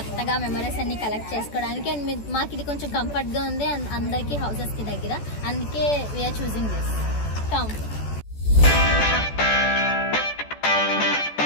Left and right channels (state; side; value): late; right; 14 ms